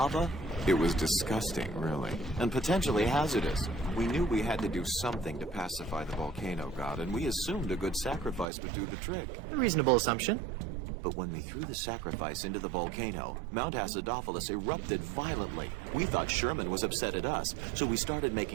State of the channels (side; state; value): left; drops out; at 8.5 s